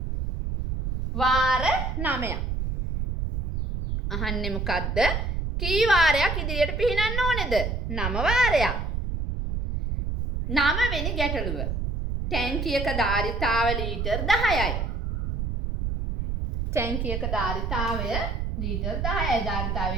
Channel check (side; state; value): right; noise; rumble, 2 dB below the sound